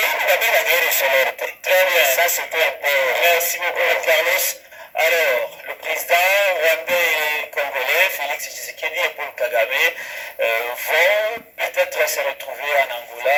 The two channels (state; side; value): identical; both; correlation 1.00